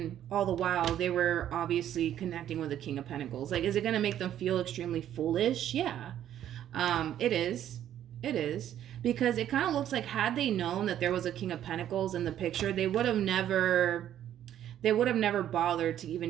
all the while they were obviously connecting with the King of Pentacles. Like, is it going to make them feel extremely foolish? Yeah, it is. It is. Because it kind of looks like had they known that there was a King of Pentacles in the picture, they would have never bothered to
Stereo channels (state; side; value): quieter; left; 11.0 dB